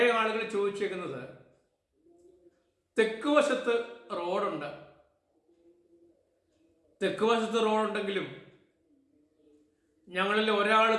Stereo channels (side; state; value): both; identical; correlation 1.00